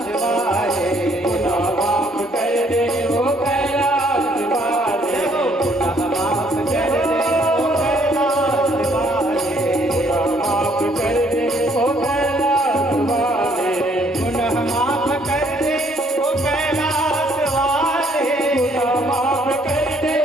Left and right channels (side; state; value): both; normal; correlation 0.66